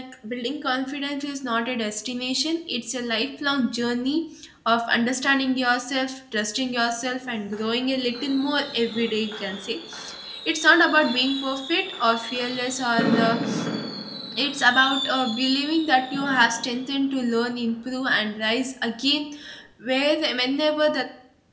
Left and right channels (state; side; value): identical; both; correlation 1.00